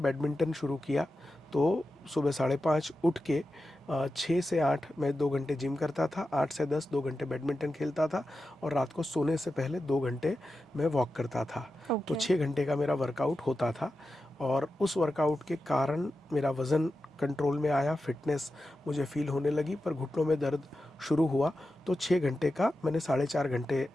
शुरू किया, तो सुबह 5:30 उठ के 6 से 8 मैं 2 घंटे जिम करता था, 8 से 10 2 घंटे बैडमिंटन खेलता था, और रात को सोने से पहले 2 घंटे मैं वॉक करता था। तो 6 घंटे का मेरा वर्कआउट होता था, और उस वर्कआउट के कारण मेरा वज़न कंट्रोल में आया, फिटनेस मुझे फील होने लगी, पर घुटनों में दर्द शुरू हुआ। तो 6 घंटे का मैंने 4.5 घंटे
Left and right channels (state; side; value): normal; both; correlation 0.91